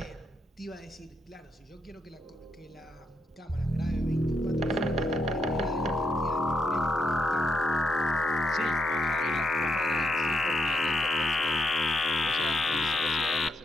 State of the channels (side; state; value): both; normal; correlation 0.79